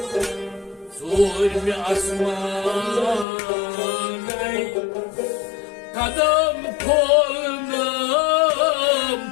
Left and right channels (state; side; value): drops out; right; at 3.2 s